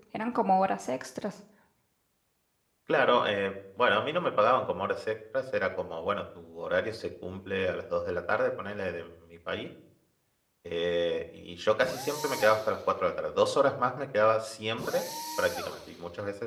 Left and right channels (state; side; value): identical; both; correlation 1.00